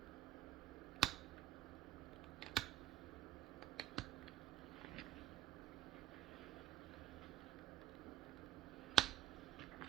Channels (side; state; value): left; quieter; 12.4 dB